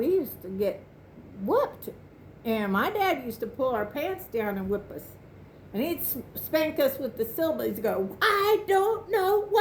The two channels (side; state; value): both; identical; correlation 1.00